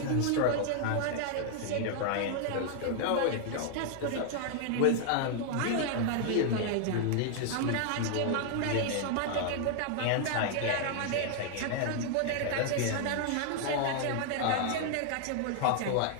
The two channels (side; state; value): both; different; correlation 0.00